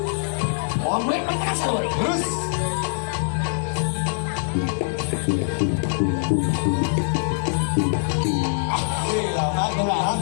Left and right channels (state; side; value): silent; right; digital silence